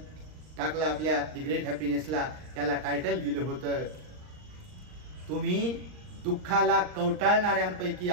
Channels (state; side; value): late; left; 39 ms